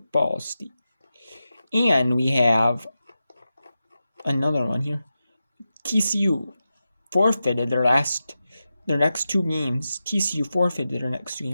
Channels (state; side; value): inverted; both; correlation -0.91